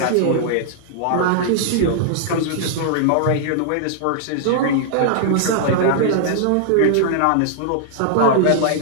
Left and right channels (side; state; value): both; different; correlation -0.01